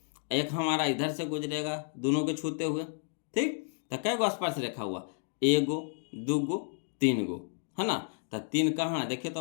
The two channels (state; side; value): silent; right; digital silence